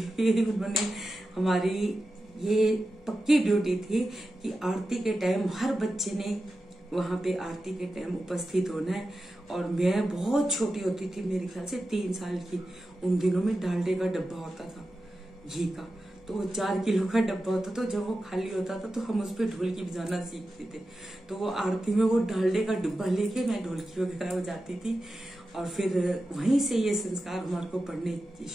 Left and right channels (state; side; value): normal; both; correlation 0.92